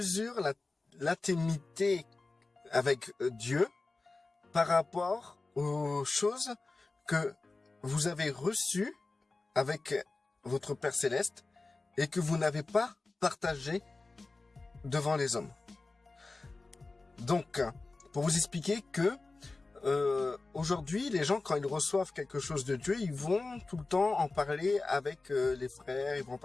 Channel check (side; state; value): right; quieter; 3.5 dB